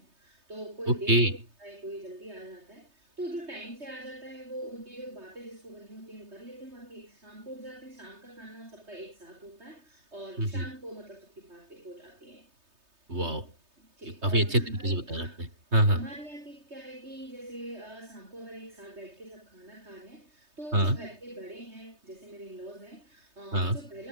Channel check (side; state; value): left; late; 3.2 ms